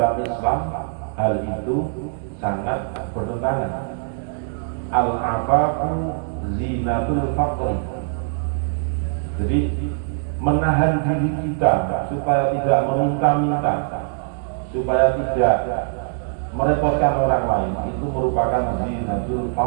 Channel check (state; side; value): silent; left; digital silence